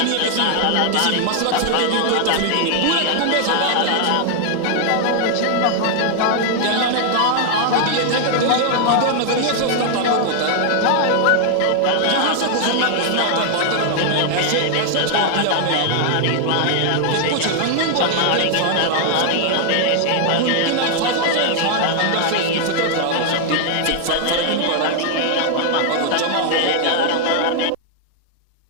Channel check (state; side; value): different; both; correlation 0.00